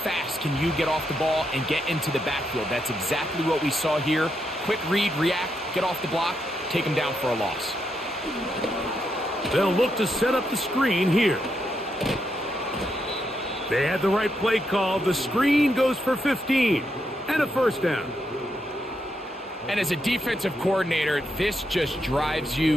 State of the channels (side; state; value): both; normal; correlation 0.81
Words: can you get off the ball and get into the backfield? That's exactly what we saw here. Quick read, react, get off the block, take him down for a loss. They'll look to set up the screen here. They had the right play call. The screen goes for 15 and a 1st down. And as a defensive coordinator, this just drives